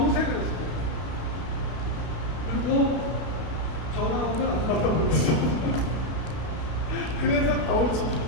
했어요. 그리고 전화오면 안 받아버렸어. 그래서 가오를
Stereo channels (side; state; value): right; late; 32 ms